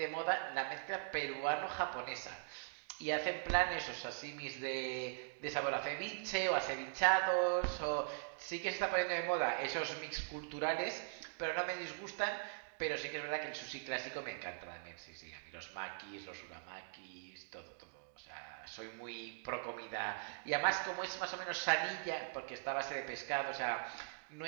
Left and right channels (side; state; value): left; silent; digital silence